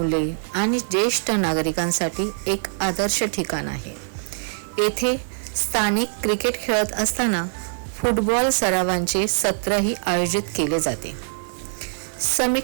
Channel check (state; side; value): silent; left; 58 dB below the other